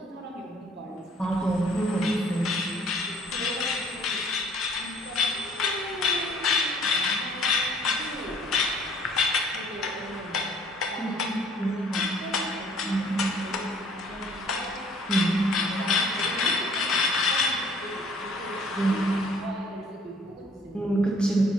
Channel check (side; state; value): both; normal; correlation 0.57